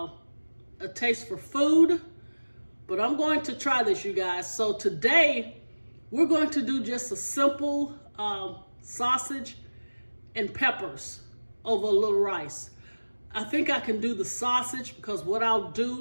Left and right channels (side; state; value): both; inverted; correlation -1.00